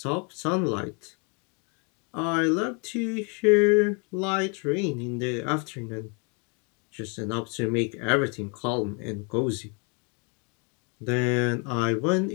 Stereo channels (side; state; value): right; quieter; 34.7 dB